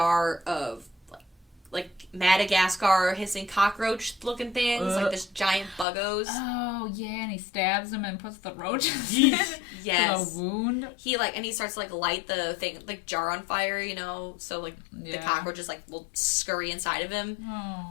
of, like Madagascar hissing cockroach looking things, like this giant buggos. Oh, yeah, and he stabs him and puts the roaches in yes. the wound. He, like, and he starts to, like, light the thing, like, jar on fire, you know, so, like, the cockroaches, like, will scurry inside of him.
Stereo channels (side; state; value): right; drops out; at 5.9 s